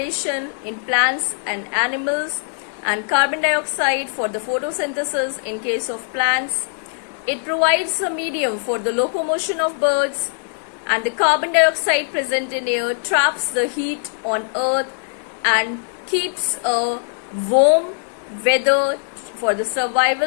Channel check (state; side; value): silent; right; digital silence